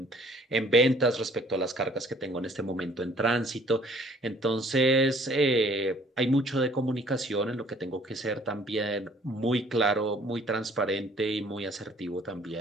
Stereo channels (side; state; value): both; normal; correlation 0.57